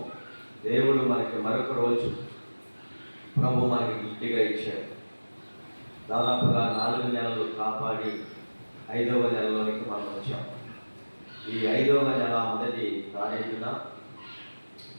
దేవుడు మనకి మరొక రోజు ప్రభు మనకి గిఫ్ట్గా ఇచ్చాడు. దాదాపుగా 4 నెలలు కాపాడి 5వ నెలలోనికి మనం వచ్చాం. ఈ 5వ నెల మొదటి తారీఖున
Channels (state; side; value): inverted; both; correlation -1.00